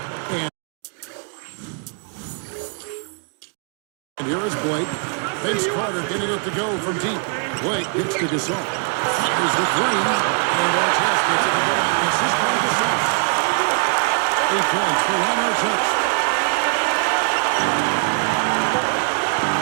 And here is Blake. Vince Carter getting it to go from deep. Blake gets to Gasol. Fires the 3. And Artest gets it to go on the assist by Gasol. 8 points for Ron Artest.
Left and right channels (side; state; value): left; quieter; 38.3 dB